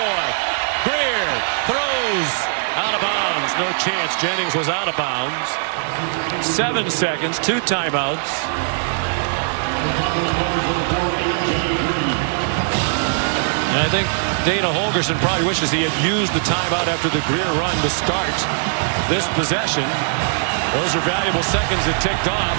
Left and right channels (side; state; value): left; silent; digital silence